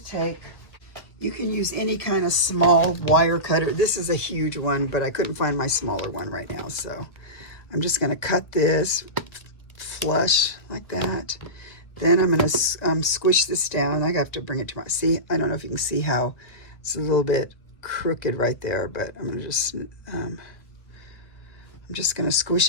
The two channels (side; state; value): right; late; 1.9 ms